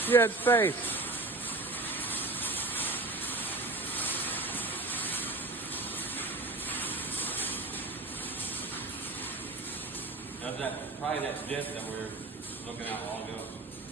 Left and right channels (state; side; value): quieter; left; 3.1 dB